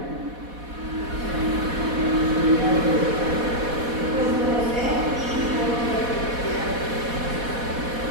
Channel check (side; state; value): left; late; 4.1 ms